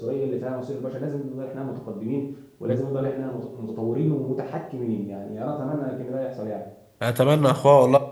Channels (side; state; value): both; identical; correlation 1.00